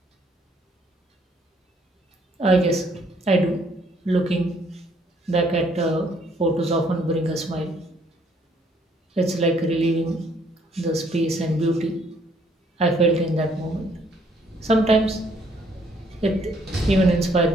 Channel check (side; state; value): both; normal; correlation 0.66